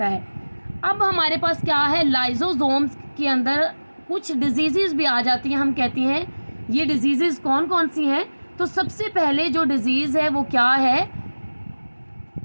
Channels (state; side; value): inverted; both; correlation -1.00